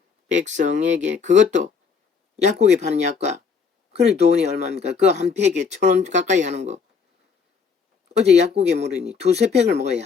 백성에게, 그것도 약국에 파는 약과, 그래 돈이 얼마입니까? 그거 한 팩에 1,000원 가까이 하는 거 어제 약국에 물으니 2~3팩을 먹어야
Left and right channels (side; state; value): right; quieter; 5.6 dB